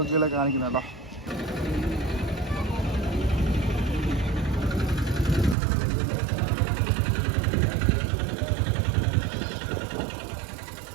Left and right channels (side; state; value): left; drops out; at 5.6 s